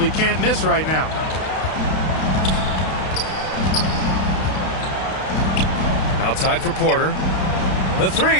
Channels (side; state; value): right; late; 32 ms